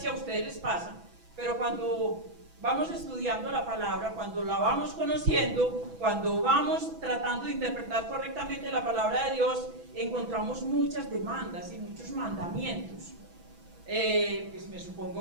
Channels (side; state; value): left; late; 6.1 ms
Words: ustedes les pasa, pero cuando vamos estudiando la palabra, cuando la vamos conociendo, cuando vamos tratando de interpretar correctamente la palabra de Dios, encontramos muchas demandas y muchos mandamientos. Pues me